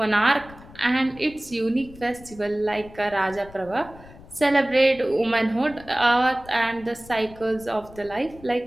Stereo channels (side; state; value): left; noise; rumble, 20 dB below the sound